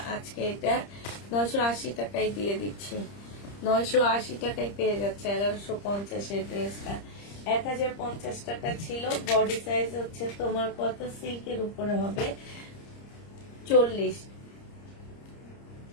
আজকে এটা 980 টাকায় দিয়ে দিচ্ছি। 980 টাকায় পেয়ে যাচ্ছে 1150 এর ড্রেসটা। 1050 টাকা ছিল। বডি সাইজ হচ্ছে তোমার কত, সিল্কের উপরে হবে 40।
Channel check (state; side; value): late; right; 30 ms